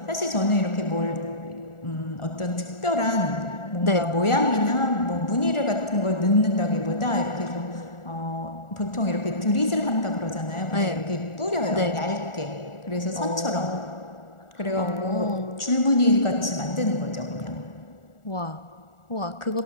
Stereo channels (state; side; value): late; right; 1.4 ms